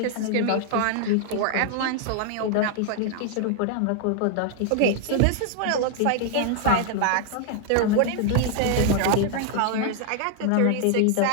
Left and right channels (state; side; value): different; both; correlation 0.00